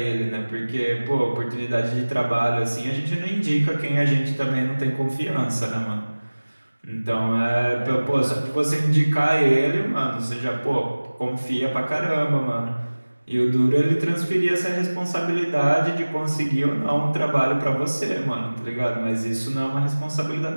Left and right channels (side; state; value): both; inverted; correlation -1.00